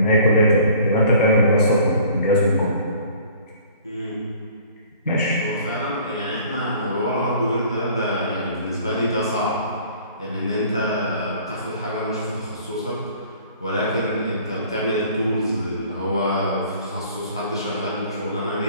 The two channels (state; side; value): inverted; both; correlation -0.51